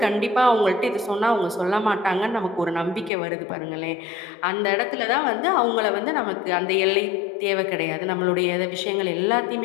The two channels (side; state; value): right; drops out; at 3.1 s